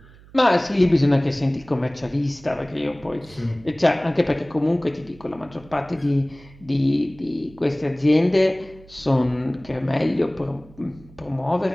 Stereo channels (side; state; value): right; noise; hum, 23 dB below the sound